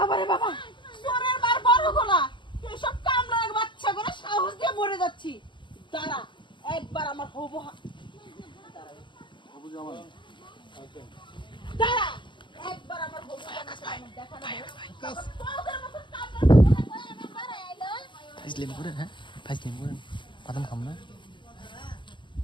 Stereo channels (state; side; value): late; right; 0.23 ms